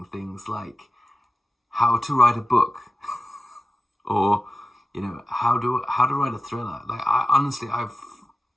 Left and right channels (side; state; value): both; normal; correlation 0.94